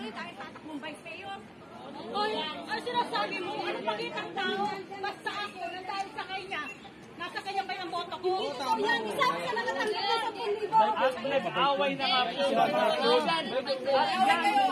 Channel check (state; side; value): identical; both; correlation 1.00